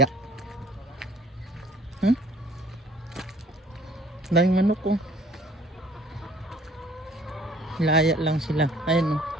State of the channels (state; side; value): normal; both; correlation 0.56